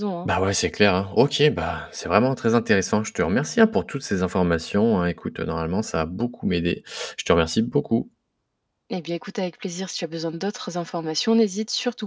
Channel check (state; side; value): identical; both; correlation 1.00